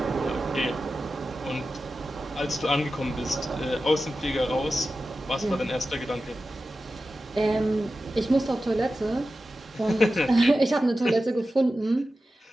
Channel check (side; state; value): both; normal; correlation 0.93